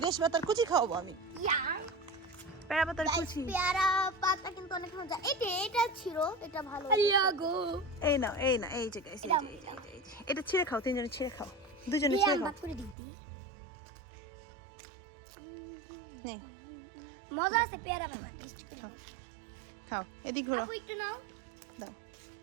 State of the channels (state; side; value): drops out; left; at 13.0 s